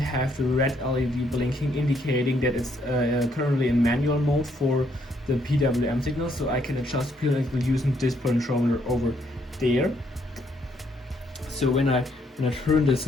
the red LED blinking, indicating that it's currently in manual mode for the PWM signal. So I can adjust PWM using this controller over there. So when I turn this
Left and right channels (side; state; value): both; normal; correlation 0.71